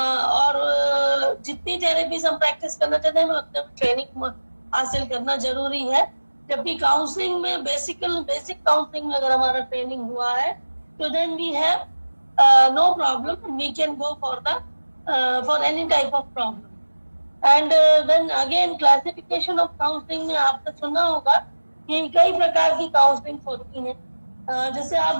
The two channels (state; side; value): inverted; both; correlation -1.00